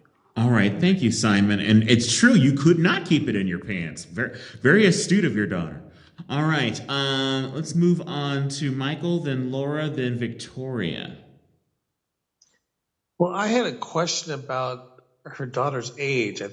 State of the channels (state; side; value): identical; both; correlation 1.00